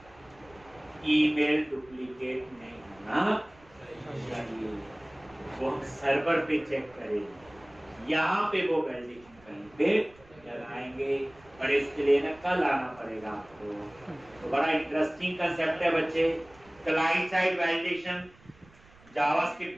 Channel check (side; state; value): right; noise; rumble, 27 dB below the sound